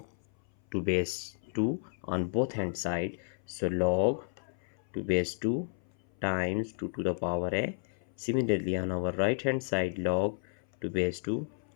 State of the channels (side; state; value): right; silent; 56 dB below the other